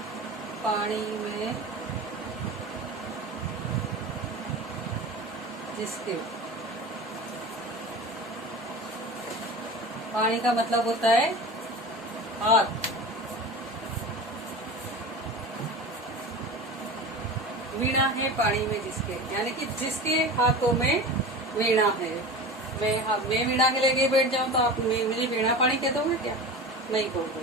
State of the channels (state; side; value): normal; both; correlation 0.32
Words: पानी में जिसके। पानी का मतलब होता है हाथ। वीणा है पानी में जिसके, यानी कि जिसके हाथों में वीणा है। मैं वीणा के लेके बैठ जाऊं तो आप मुझे वीणा पानी कह दोगे क्या? नहीं